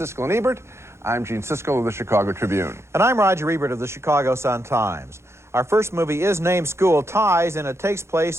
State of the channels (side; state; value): left; late; 0.13 ms